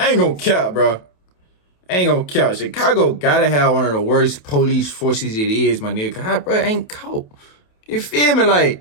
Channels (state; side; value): late; right; 28 ms